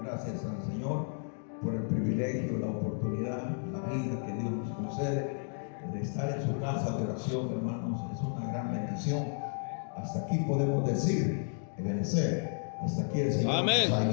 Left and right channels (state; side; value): silent; right; 56 dB below the other